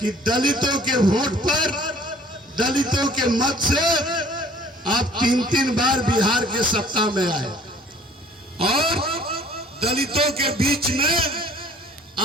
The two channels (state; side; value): normal; both; correlation 0.53